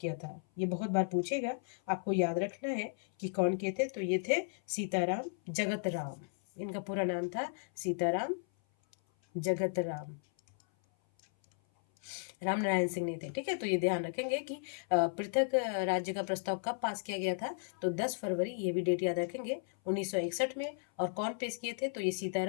था। ये बहुत बार पूछेगा, आपको याद रखना है कि कौन के थे, तो ये थे सीताराम जगत राम, इनका पूरा नाम था सीताराम जगत राम, राम नारायण सिंह नहीं थे। ठीक है, तो ये ध्यान रखेंगे कि पृथक राज्य का प्रस्ताव कब पास किया गया था, तो 10 फरवरी, ये भी डेट याद रखेंगे, 1961 में। और कौन पेश किए थे, तो ये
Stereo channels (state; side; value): silent; right; 55 dB below the other